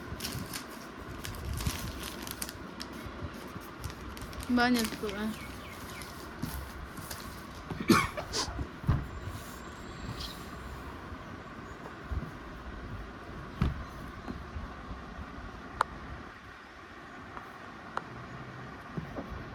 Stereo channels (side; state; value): both; identical; correlation 1.00